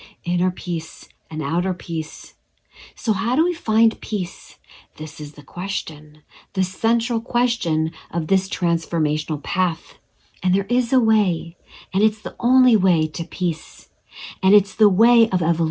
inner peace and outer peace. So, how do we find peace? This is the question, the central question of this transformational path. And there is a way, and it's the only way to peace. And it's the way of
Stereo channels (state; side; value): identical; both; correlation 1.00